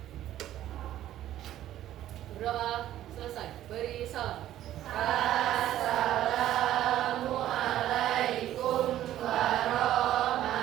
Berdoa, selesai. Beri salam. Assalamualaikum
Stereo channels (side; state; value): left; quieter; 12.8 dB